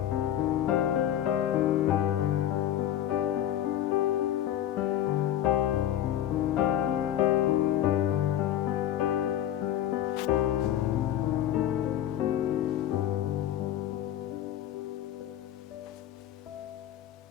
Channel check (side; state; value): right; quieter; 11.5 dB